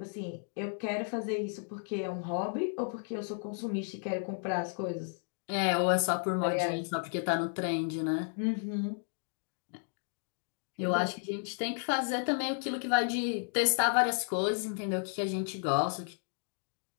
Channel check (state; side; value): silent; right; 56 dB below the other